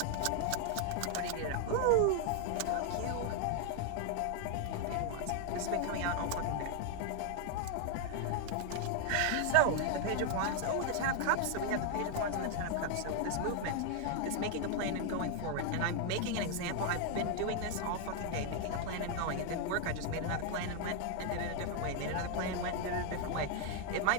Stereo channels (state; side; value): different; both; correlation 0.00